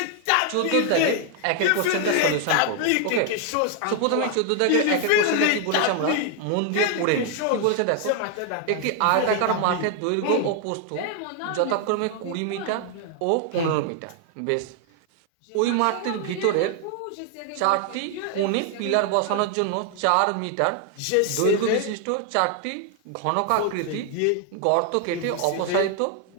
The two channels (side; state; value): both; different; correlation 0.00